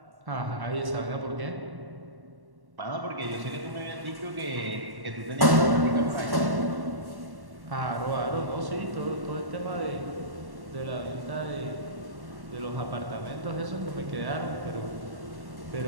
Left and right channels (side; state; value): left; late; 1.1 ms